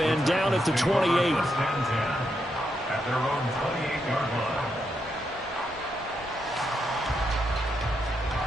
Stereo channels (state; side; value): normal; both; correlation 0.81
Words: and down at the 28. At their own 28-yard line.